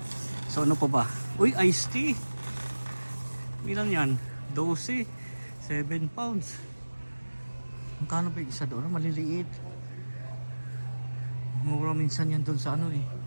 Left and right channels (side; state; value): both; inverted; correlation -1.00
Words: So ano pa ba? Uy, iced tea. Ilan yan? 12. 7 pounds. Magkano ba yung isa doon? Maliliit. Mura minsan yan doon sa